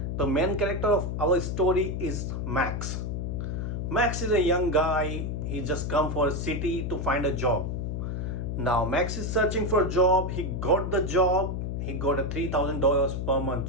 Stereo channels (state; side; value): noise; left; hum, 3 dB below the sound